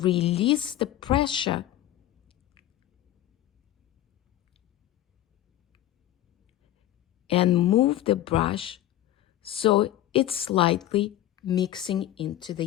the pressure and move the brush so it's slightly mixing into the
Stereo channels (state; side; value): quieter; right; 13.4 dB